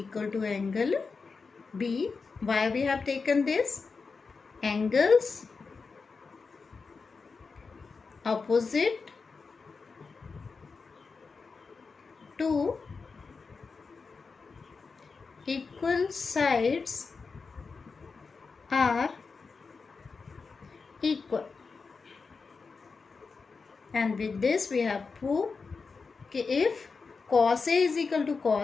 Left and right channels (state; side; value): quieter; right; 4.7 dB